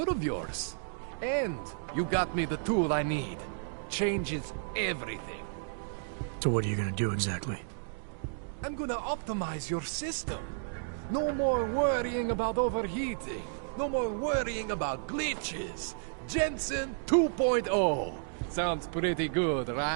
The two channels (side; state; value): left; silent; digital silence